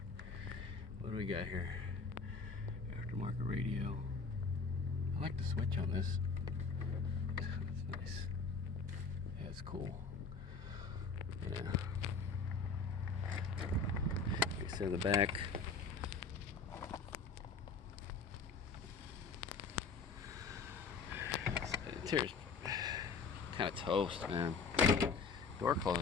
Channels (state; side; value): quieter; right; 4.8 dB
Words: What do we got here? Aftermarket radio. I like the switch on this. It's nice. Yeah, it's cool. Yeah. Like I said, the back. Interior's kind of toast, man. Door